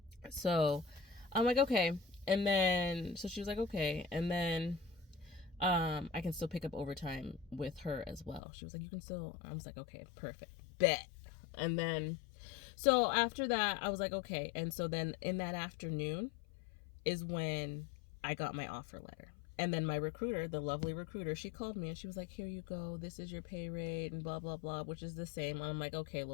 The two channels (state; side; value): drops out; right; at 8.4 s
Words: So I'm like, okay. And then, so she was like, okay. And then I can still pick up overtime with her as well. She was like, you can still, I was like, okay, perfect, bet. And then, so after that, I was like, okay. And so then in that afternoon is when I got my offer letter. And then my recruiter, the lovely recruiter, she called me and she was like, here you go, this is your pay rate and blah, blah, blah, which is the same. And I'm like, okay,